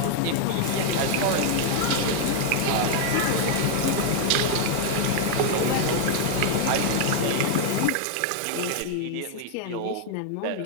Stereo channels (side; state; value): both; different; correlation 0.00